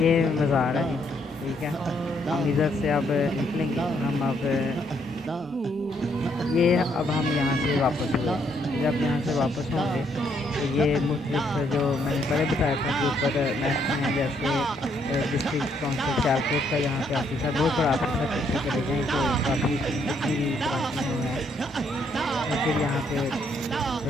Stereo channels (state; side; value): normal; both; correlation 0.72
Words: مزار ہے جی, ٹھیک ہے. ہم ادھر سے اب نکلیں گے, ہم اب ہم یہاں سے واپس ہوئے. جب یہاں سے واپس ہوں گے تو یہ مختلف جو میں نے پہلے بتایا تھا کہ اوپر محکمے ہیں جیسے ڈسٹرکٹ کونسل سیالکوٹ کا, یہاں پہ آفس ہے, بہت بڑا آفس ہے. پیچھے چلے جائیں تو کافی اتنی بھی برانچیں ہیں. اور پھر یہاں پہ